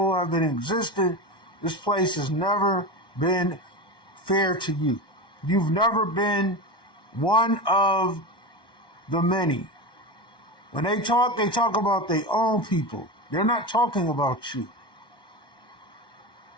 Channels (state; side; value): late; right; 1.2 ms